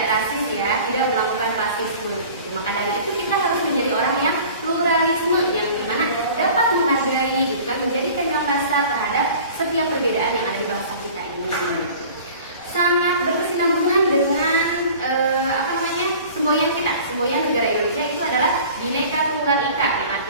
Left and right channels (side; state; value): both; inverted; correlation -0.44